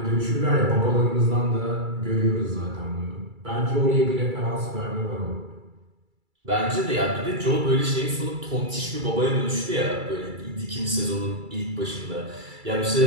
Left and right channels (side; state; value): left; late; 2.3 ms